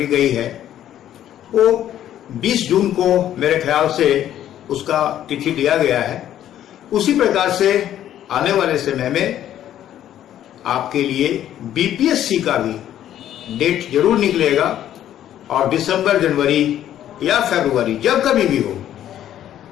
गई है वो 20 जून को मेरे ख्याल से उसका तिथि दिया गया है। उसी प्रकार से आने वाले समय में आपके लिए बीपीएससी का भी डेट जरूर निकलेगा और दिसंबर, जनवरी या फरवरी जब कभी भी हो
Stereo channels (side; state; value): right; quieter; 11.5 dB